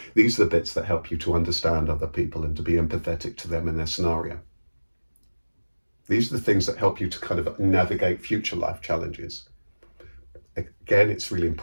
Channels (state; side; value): inverted; both; correlation -1.00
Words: These are the bits that help you to understand other people and to be empathetic to them and their scenario. These are the things that help you to kind of navigate future life challenges. Again, it's really